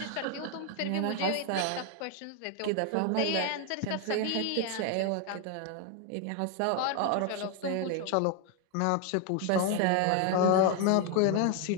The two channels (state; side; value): different; both; correlation 0.01